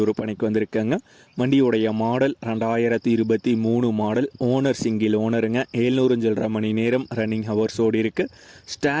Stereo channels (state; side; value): identical; both; correlation 1.00